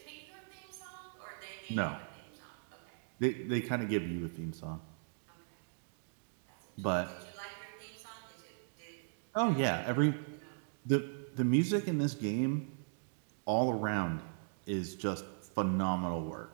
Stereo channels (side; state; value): left; silent; digital silence